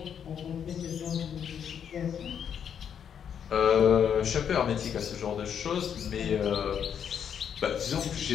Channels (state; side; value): quieter; right; 8.2 dB